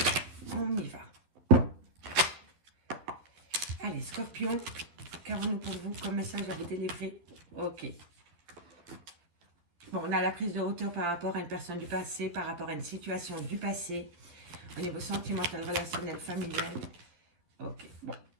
On y va. Allez, Scorpion, qu'avons-nous pour vous comme message à vous délivrer? Ok. Bon, on a la prise de hauteur par rapport à une personne du passé, par rapport à une situation du passé, au niveau sentimental, relationnel, familial. Ok, bon.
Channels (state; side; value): late; left; 12 ms